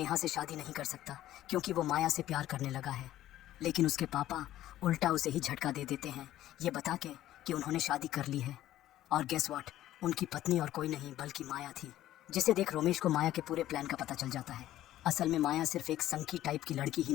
से शादी नहीं कर सकता क्योंकि वो माया से प्यार करने लगा है। लेकिन उसके पापा उल्टा उसे ही झटका दे देते हैं, ये बता के कि उन्होंने शादी कर ली है। और गेस व्हाट, उनकी पत्नी और कोई नहीं बल्कि माया थी, जिसे देख रोमेश को माया के पूरे प्लान का पता चल जाता है। असल में माया सिर्फ एक संकी टाइप की लड़की ही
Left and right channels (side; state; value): right; quieter; 13.7 dB